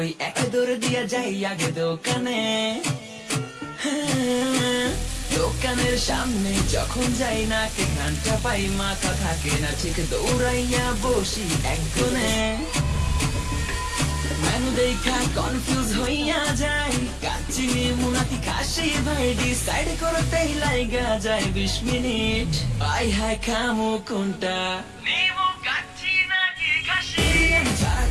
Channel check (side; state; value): both; identical; correlation 1.00